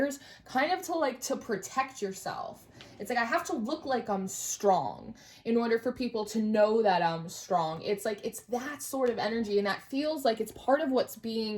kind of to protect yourself. It's like, I have to look like I'm strong in order for people to know that I'm strong. It's like, it's that sort of energy, and that feels like it's part of what's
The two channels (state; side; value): identical; both; correlation 1.00